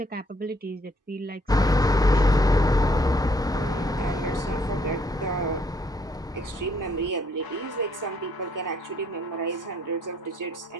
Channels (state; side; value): normal; both; correlation 0.68